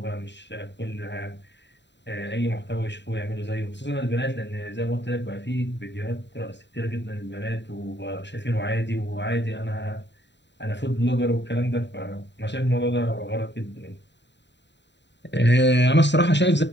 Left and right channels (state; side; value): late; right; 0.52 ms